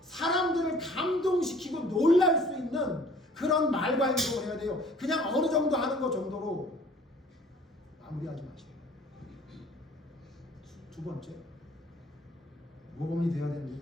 사람들을 감동시키고 놀랄 수 있는 그런 말과 행동을 해야 돼요. 그냥 어느 정도 하는 것 정도로 마무리하지 마시고. 두 번째, 모범이 되어야 되는데,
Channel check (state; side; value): normal; both; correlation 0.53